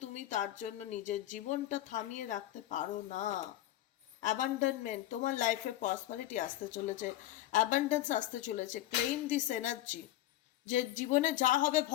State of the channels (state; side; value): quieter; right; 14.3 dB